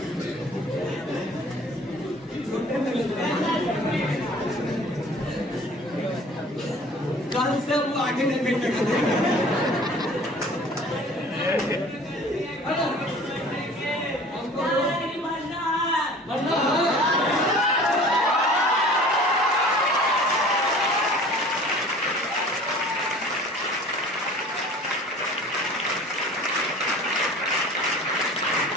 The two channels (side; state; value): both; normal; correlation 0.46